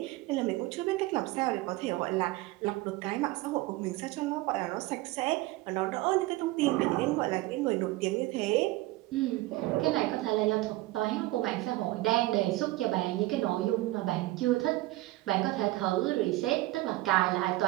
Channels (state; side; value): quieter; left; 18.9 dB